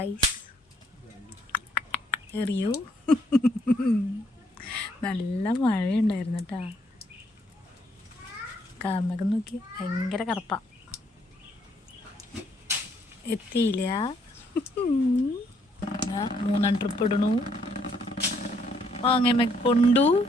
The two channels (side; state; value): both; normal; correlation 0.69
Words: എറിയൂ. നല്ല മഴയുണ്ടായിരുന്നു കേട്ടാ. കാർമകം നോക്കി, ഭയങ്കര കറുപ്പ. എത്തിയില്ല. 3 ട്രിപ്പ് ഇടണു. മാങ്ങ കൊണ്ടു,